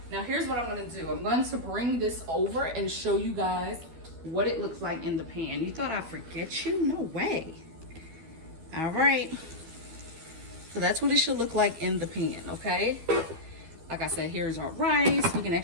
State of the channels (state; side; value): late; left; 12 ms